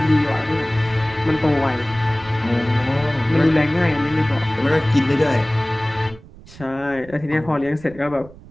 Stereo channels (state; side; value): noise; right; rumble, 20 dB below the sound